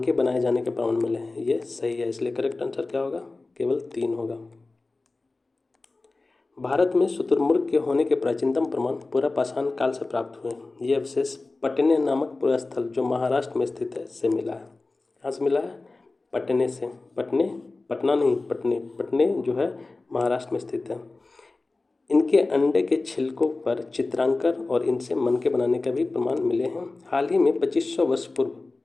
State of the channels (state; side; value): quieter; right; 3.4 dB